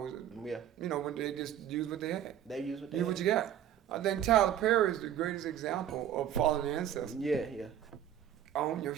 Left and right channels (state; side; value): quieter; left; 10.3 dB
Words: they just use what they had. They use what they had. What you got. I think Tyler Perry is the greatest example of following the ancestors. Yeah. Own your